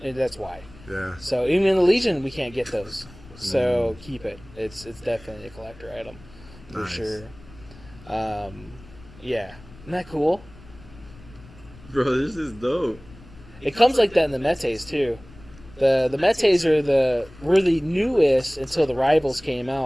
and that's why. Yeah. So even in the Legion, we can't get those. So keep it. It's definitely a collector item for Nice. sure. Yeah, isn't that cool? Bro, this is dope. It comes like that in the Metes too. The Metes were the newest until the Rivals came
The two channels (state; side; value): noise; left; rumble, 21 dB below the sound